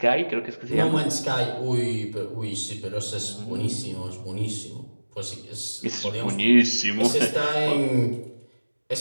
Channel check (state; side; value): inverted; both; correlation -1.00